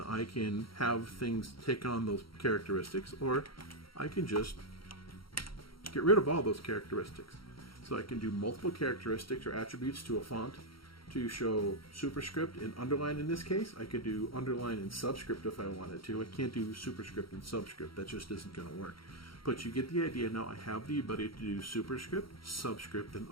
I can have things take on those characteristics, or I can just get rid of all those characteristics. So I can do multiple characteristics or attributes to a font to show superscript and underline in this case. I could do underline and subscript if I wanted to. I can't do superscript and subscript. That just isn't going to work. But you get the idea. Now I have the ability to do superscript, subscript, and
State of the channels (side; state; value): right; late; 0.74 ms